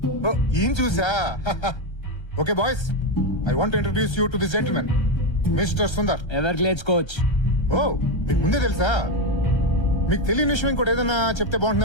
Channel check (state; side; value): late; right; 1.3 ms